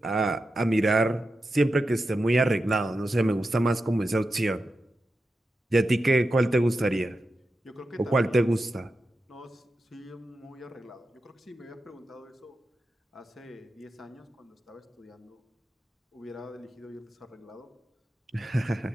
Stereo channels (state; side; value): normal; both; correlation 0.90